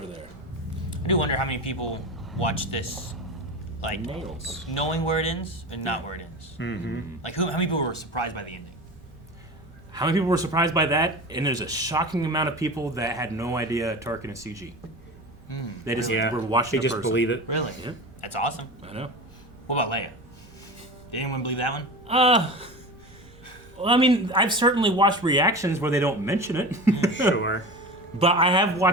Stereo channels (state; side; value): normal; both; correlation 0.30